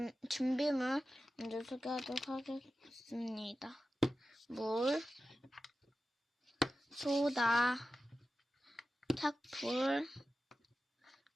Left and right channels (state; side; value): normal; both; correlation 0.93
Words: 준비물 먼저 소개하도록 하겠습니다. 물, 소다, 탁풀,